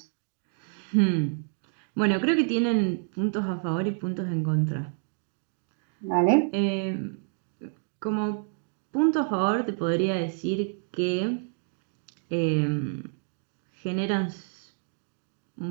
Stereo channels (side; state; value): left; silent; 59 dB below the other